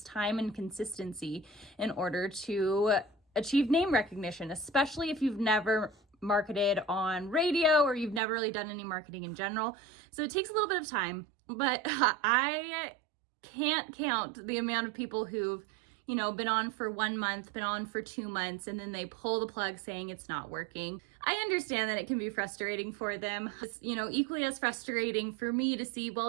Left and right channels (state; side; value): drops out; left; at 8.2 s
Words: time and consistency in order to achieve name recognition, especially if you've never marketed on radio or you've never really done any marketing in general. So it takes a little bit of time. But I can't count the amount of people who've, been on for 1 month, been on for 2 months, and then they pull the plug saying it's not working. I understand that it can be frustrating for them. It's, equally as frustrating for me to see, well,